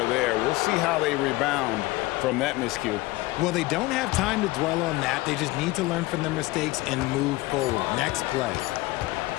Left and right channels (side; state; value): right; quieter; 20.1 dB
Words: there. We'll see how they rebound from that miscue. Well, they don't have time to dwell on that. They just need to learn from their mistakes and move forward. Next play.